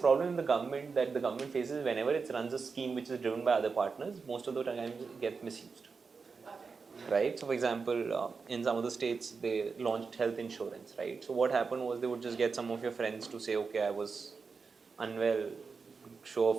in the government that the government faces, whenever it runs a scheme which is driven by other partners, most of the time it gets misused. Right? So for example, in some of the states, they launched health insurance, right? So what happened was, they would just get some of your friends to say, okay, I was unwell, show a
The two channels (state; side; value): quieter; left; 5.0 dB